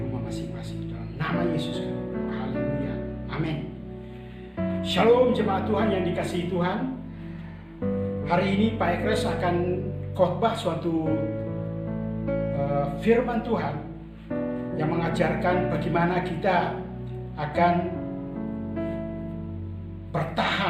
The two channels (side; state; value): both; identical; correlation 1.00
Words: masing-masing. Dalam nama Yesus kami berdoa. Haleluya. Amin. Shalom jemaat Tuhan yang dikasihi Tuhan. Hari ini Pak Ekres akan khotbah suatu firman Tuhan yang mengajarkan bagaimana kita akan